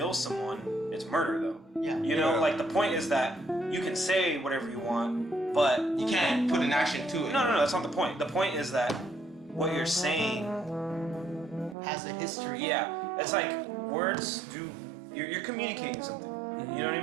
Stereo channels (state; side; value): drops out; left; at 11.8 s